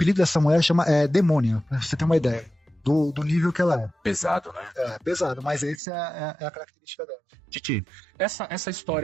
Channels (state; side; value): drops out; left; at 5.8 s